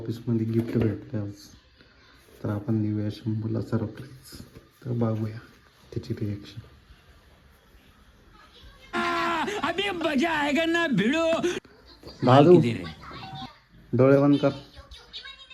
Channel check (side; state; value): both; identical; correlation 1.00